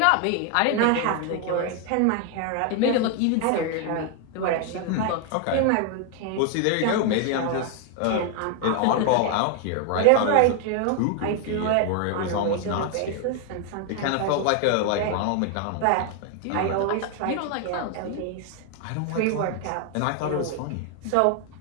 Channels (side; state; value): both; different; correlation 0.00